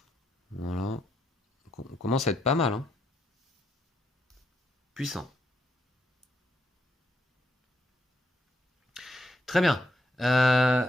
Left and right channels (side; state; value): both; normal; correlation 0.79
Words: Voilà. On commence à être pas mal. Hein. Puissant. Très bien.